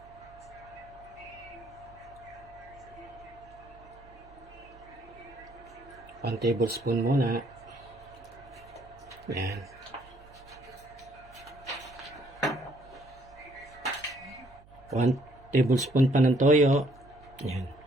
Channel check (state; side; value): noise; right; hum, 24 dB below the sound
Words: 1 tablespoon muna. Yan. One tablespoon pa ng toyo. Yan.